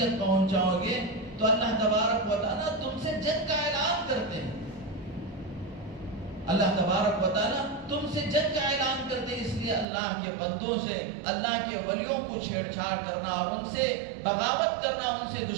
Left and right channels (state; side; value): drops out; left; at 9.9 s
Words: پہنچاؤ گے تو اللہ تبارک و تعالیٰ تم سے جنگ کا اعلان کرتے ہیں۔ اللہ تبارک و تعالیٰ تم سے جنگ کا اعلان کرتے ہیں، اس لیے اللہ کے بندوں سے، اللہ کے ولیوں کو چھیڑ چھاڑ کرنا اور ان سے بغاوت کرنا، ان سے